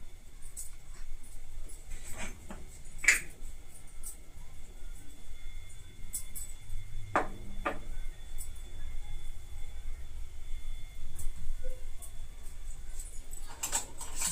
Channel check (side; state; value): both; identical; correlation 1.00